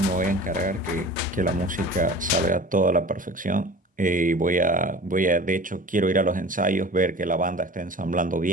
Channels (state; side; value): normal; both; correlation 0.40